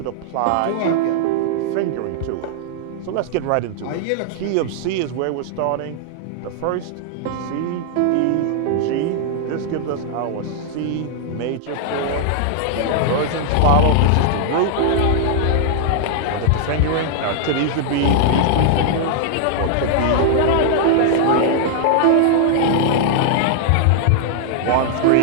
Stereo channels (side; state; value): both; different; correlation -0.01